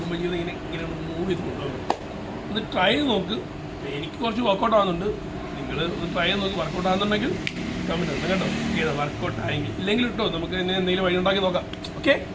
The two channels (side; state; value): both; identical; correlation 1.00